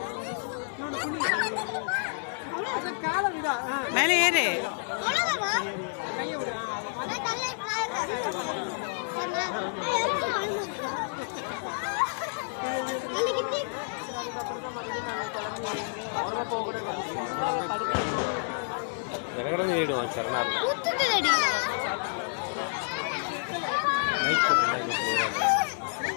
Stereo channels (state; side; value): silent; right; digital silence